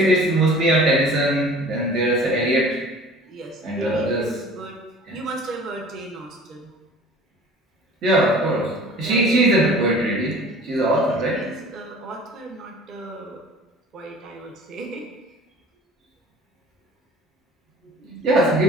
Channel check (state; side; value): normal; both; correlation 0.45